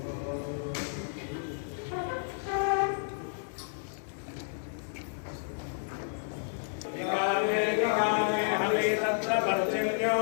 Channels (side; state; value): right; silent; digital silence